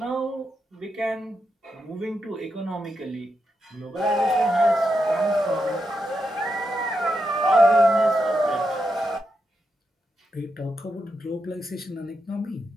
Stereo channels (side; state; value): both; normal; correlation 0.85